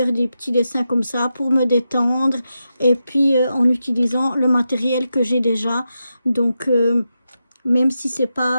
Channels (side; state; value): both; inverted; correlation -0.88